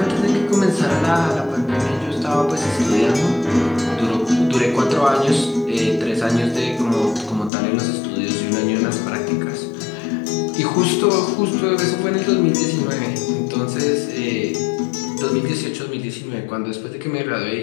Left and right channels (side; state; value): right; drops out; at 7.5 s